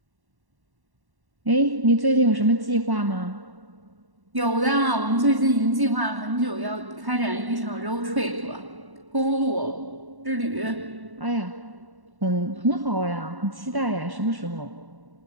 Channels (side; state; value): left; late; 1.1 ms